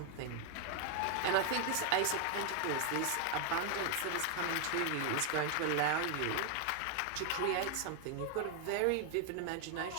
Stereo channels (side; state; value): both; different; correlation 0.01